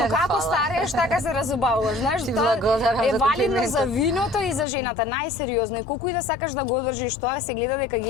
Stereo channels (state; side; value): drops out; right; at 4.7 s